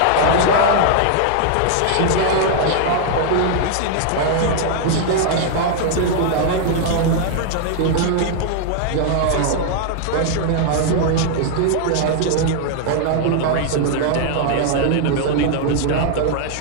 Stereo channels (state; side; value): different; both; correlation 0.00